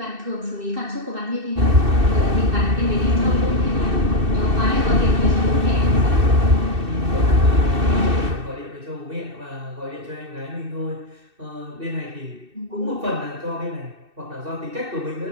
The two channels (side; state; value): left; late; 2.6 ms